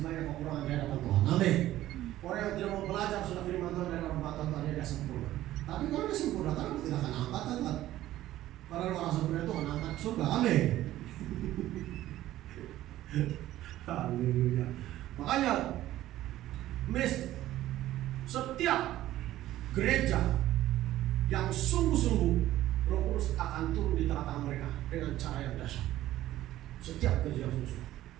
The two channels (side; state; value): left; quieter; 14.4 dB